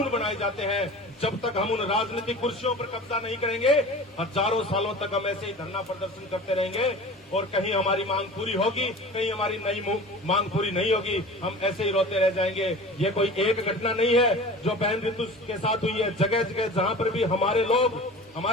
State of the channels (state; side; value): normal; both; correlation 0.38